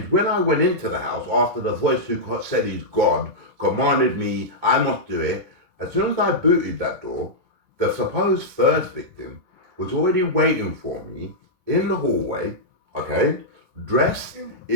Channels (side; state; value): left; late; 1.8 ms